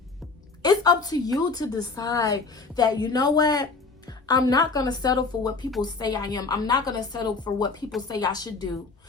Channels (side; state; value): right; quieter; 4.2 dB